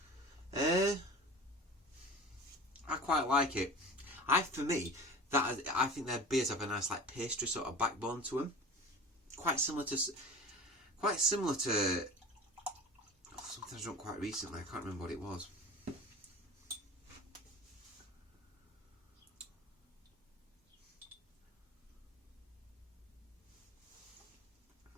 I quite like it. I think their beers have a nice like pastry sort of backbone to them. Quite similar to something I drunk quite recently. I can't remember what it was.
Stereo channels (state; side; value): normal; both; correlation 0.36